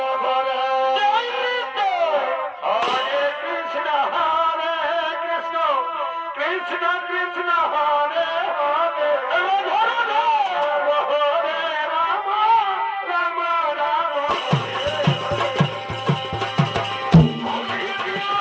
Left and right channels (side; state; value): both; identical; correlation 1.00